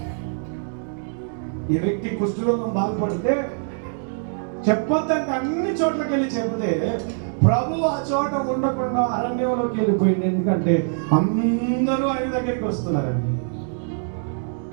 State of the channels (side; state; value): left; silent; digital silence